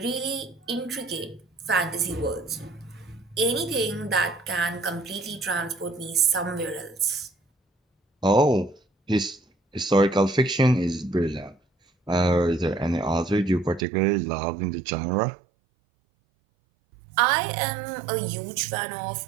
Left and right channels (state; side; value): drops out; left; at 13.9 s